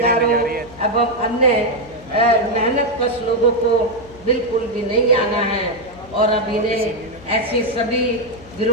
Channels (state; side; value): noise; left; hum, 22 dB below the sound